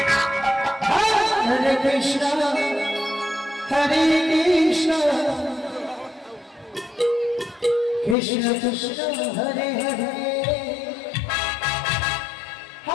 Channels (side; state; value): right; drops out; at 8.2 s